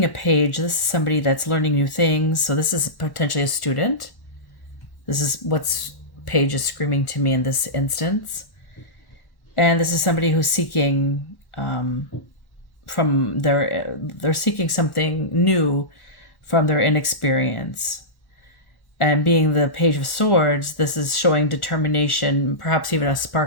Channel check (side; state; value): right; late; 1.1 ms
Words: a page, this is somebody that's learning new things. So this is potentially a student. This is what's page is screaming to me in this instance. And this is somebody who's seeking they're seeking something new from their inexperience. And being the Page of Swords, this is showing determination, perhaps even a